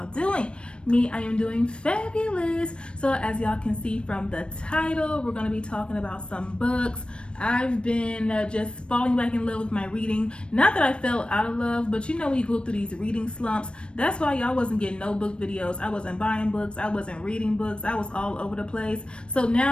doing? Me, I am doing fabulous. So as y'all can see from the title, we're going to be talking about some books. I've been just falling back in love with my reading. Not that I fell out of love, but you know when you go through these reading slumps, that's why y'all wasn't getting no book videos. I wasn't buying books. I wasn't reading books. I was all over the place. So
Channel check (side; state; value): right; late; 0.057 ms